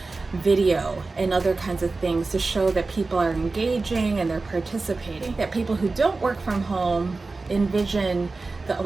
video and other kinds of things to show that people are engaging and they're participating. That people who don't work from home envision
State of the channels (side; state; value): left; quieter; 3.7 dB